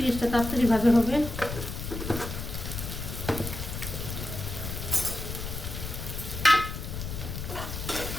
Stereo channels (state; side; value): noise; left; rumble, 6 dB below the sound